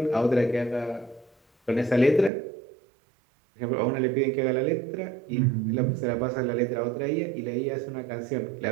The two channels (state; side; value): drops out; left; at 2.3 s